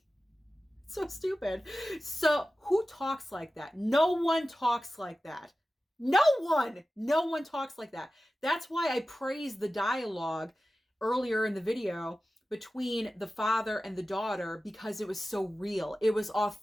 So stupid. So who talks like that? No one talks like that. No one talks like that. That's why I praised the dialogue earlier in the video between the father and the daughter, because it was so real. It was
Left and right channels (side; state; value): both; normal; correlation 0.95